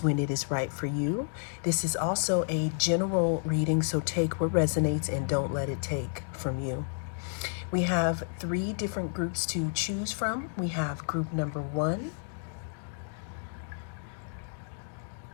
when it is right for you. This is also a general reading, so take what resonates and don't let it take from you. We have 3 different groups to choose from. We have group number 1,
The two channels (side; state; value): right; silent; digital silence